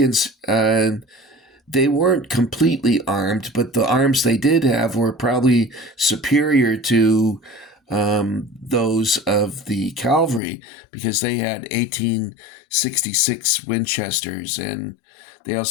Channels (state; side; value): drops out; right; at 10.4 s